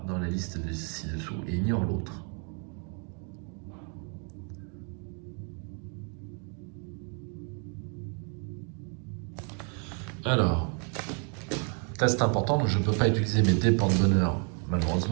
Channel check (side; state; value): left; quieter; 40.0 dB